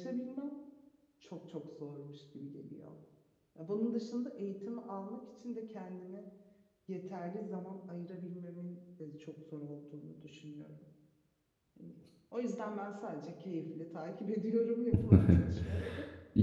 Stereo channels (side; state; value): both; identical; correlation 1.00